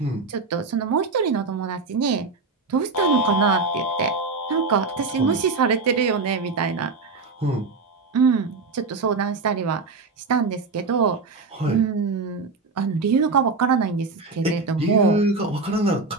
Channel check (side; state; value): left; quieter; 4.1 dB